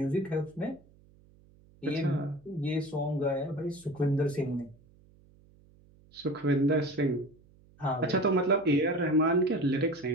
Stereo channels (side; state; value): right; noise; hum, 28 dB below the sound